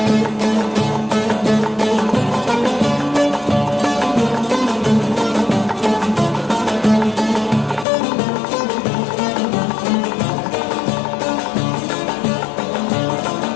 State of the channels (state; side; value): drops out; right; at 7.9 s